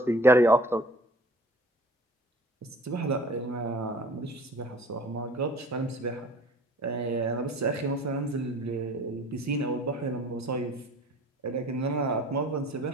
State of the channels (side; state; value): both; normal; correlation 0.48